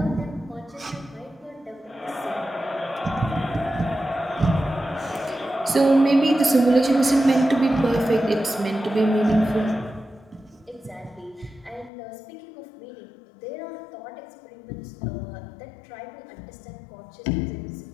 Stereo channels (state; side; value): drops out; right; at 11.9 s